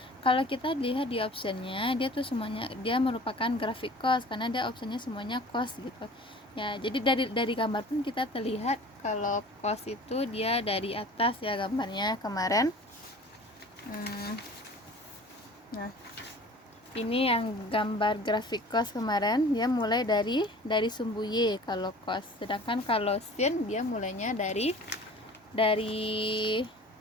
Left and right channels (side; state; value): both; normal; correlation 0.44